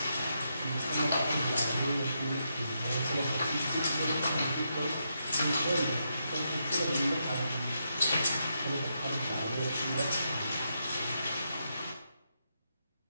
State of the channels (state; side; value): inverted; both; correlation -0.82